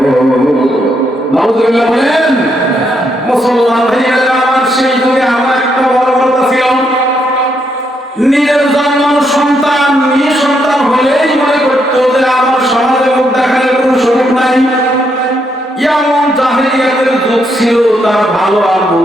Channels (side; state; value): both; normal; correlation 0.77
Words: নাউযুবিল্লাহ বলেন। মুসলমান ভাইয়েরা আমার, সেই যুগে আমার একটা বড় কথা ছিল, নিজের জন্মানো সন্তান মেয়ে সন্তান হলেই মনে করতো যে আমার সমাজে মুখ দেখানোর কোনো সুযোগ নাই। এমন জাহেলিয়াতের যুগ ছিল, তার ভালো আর